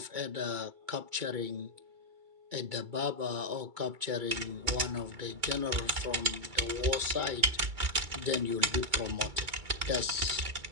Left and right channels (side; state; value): left; late; 2.3 ms